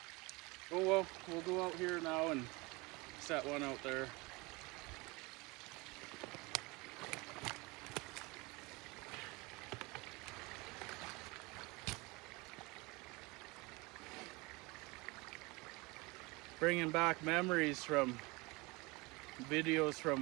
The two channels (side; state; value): left; quieter; 25.1 dB